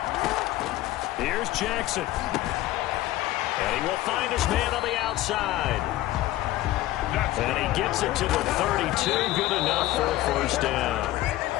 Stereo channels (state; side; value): quieter; right; 15.9 dB